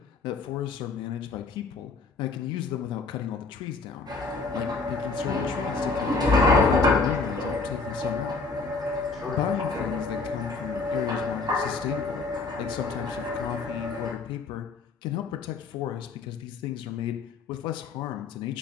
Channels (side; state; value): right; quieter; 4.2 dB